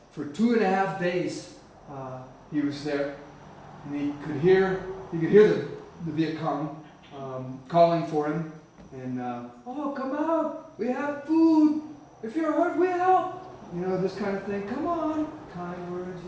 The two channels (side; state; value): both; identical; correlation 1.00